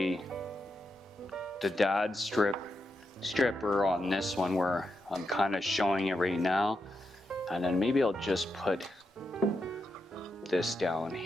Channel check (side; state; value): both; normal; correlation 0.85